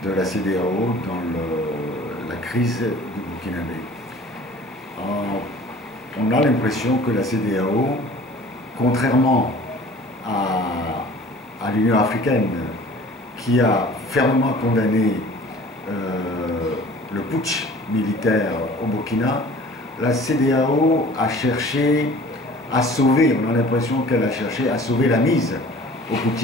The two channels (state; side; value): normal; both; correlation 0.47